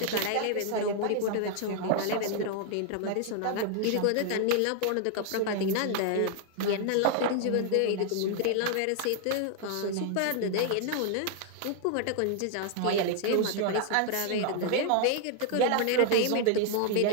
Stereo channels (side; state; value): both; different; correlation 0.00